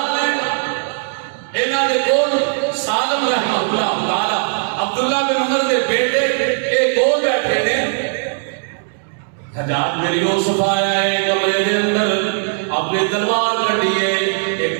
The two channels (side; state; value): left; silent; digital silence